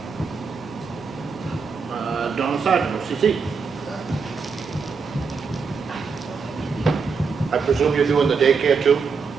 Donna Sargent, OCC. I presume you're doing the daycare too?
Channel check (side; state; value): left; quieter; 5.2 dB